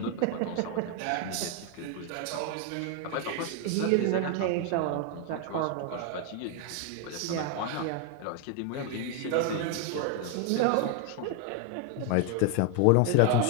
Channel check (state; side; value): different; both; correlation 0.01